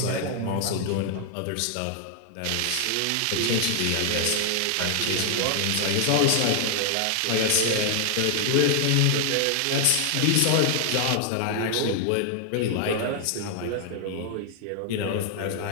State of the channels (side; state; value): both; different; correlation 0.00